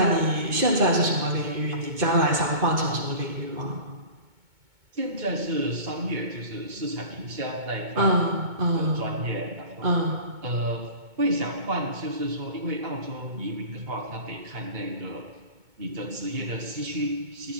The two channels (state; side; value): late; left; 2.2 ms